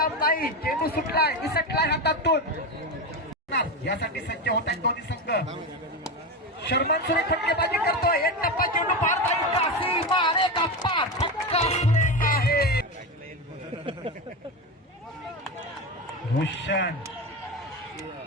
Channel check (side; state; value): both; normal; correlation 0.18